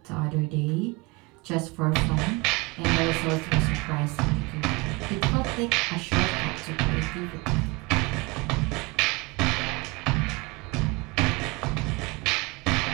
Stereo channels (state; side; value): quieter; left; 25.3 dB